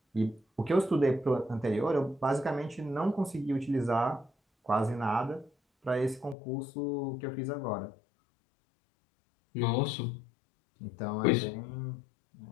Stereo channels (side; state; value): right; drops out; at 6.4 s